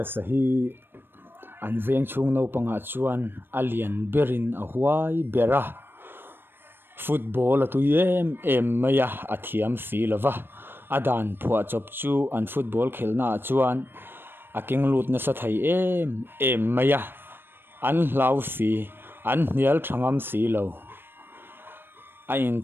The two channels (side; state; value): left; late; 0.10 ms